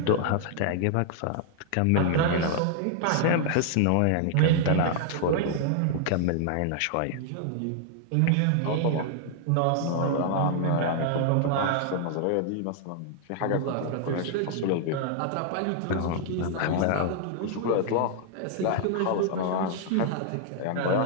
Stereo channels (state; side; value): different; both; correlation 0.00